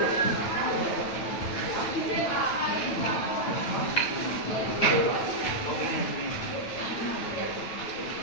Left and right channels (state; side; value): late; right; 9.1 ms